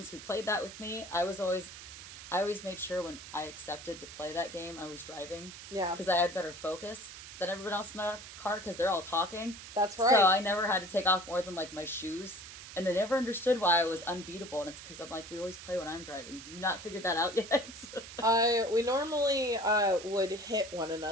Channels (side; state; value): right; noise; hiss, 13 dB below the sound